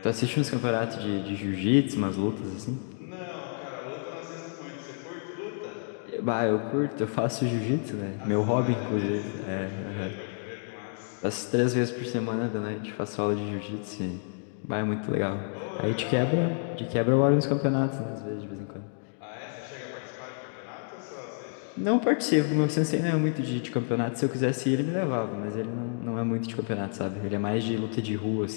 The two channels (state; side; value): silent; right; 58 dB below the other